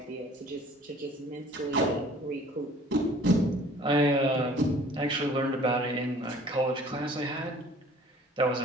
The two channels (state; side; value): normal; both; correlation 0.51